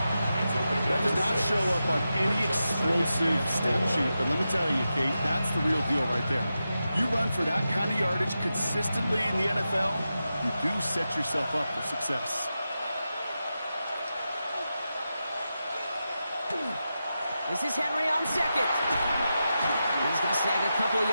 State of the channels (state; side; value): inverted; both; correlation -0.90